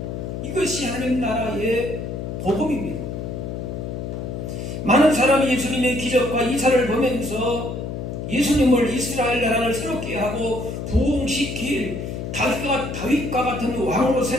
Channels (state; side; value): noise; left; hum, 6 dB below the sound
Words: 이것이 하나님 나라의 복음입니다. 많은 사람이 예수님의 기적과 이사를 보면서 예수님을 이스라엘 나라를 새롭게 하고 부흥시킬 다윗과 같은 왕으로